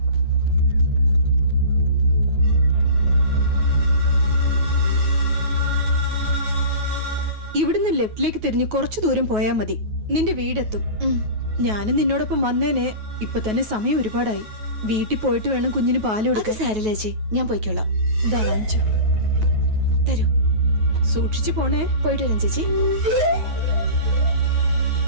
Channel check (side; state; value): left; late; 9.4 ms